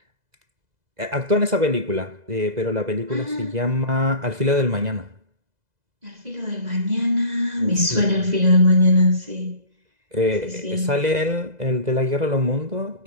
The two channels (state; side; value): late; left; 2.0 ms